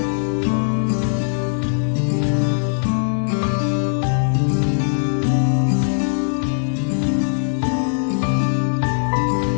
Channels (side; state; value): right; silent; digital silence